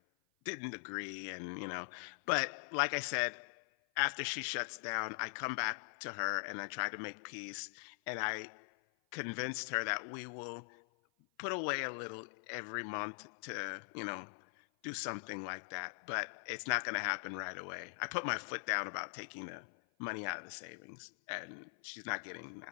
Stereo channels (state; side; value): silent; right; 50 dB below the other